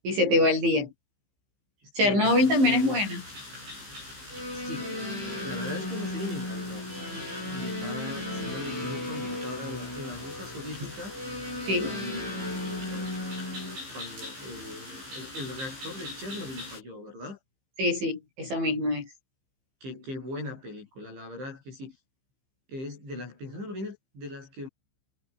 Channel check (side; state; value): left; late; 15 ms